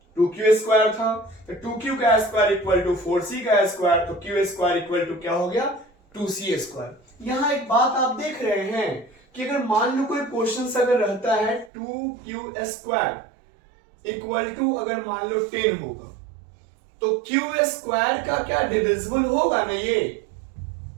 2q स्क्वायर था, तो 2q का स्क्वायर इक्वल टू 4c का स्क्वायर, तो q स्क्वायर इक्वल टू क्या हो गया, 2c स्क्वायर। यहां एक बात आप देख रहे हैं कि अगर मान लो कोई क्वेश्चन अगर रहता है 2q स्क्वायर इक्वल टू अगर मान लो 10 होगा, तो q स्क्वायर का क्या डिविजिबल होगा ना ये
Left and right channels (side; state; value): left; drops out; at 11.7 s